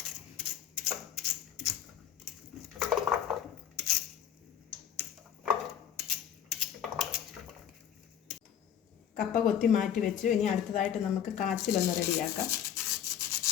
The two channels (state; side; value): quieter; right; 9.5 dB